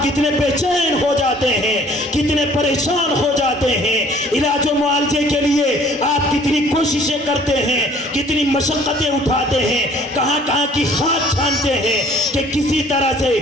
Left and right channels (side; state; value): both; normal; correlation 0.55